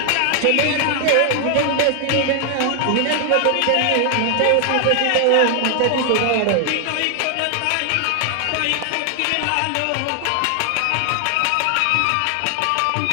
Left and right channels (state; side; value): different; both; correlation 0.00